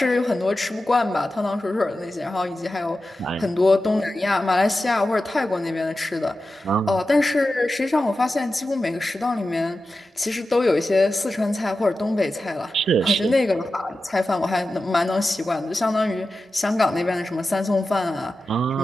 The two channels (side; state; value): both; normal; correlation 0.93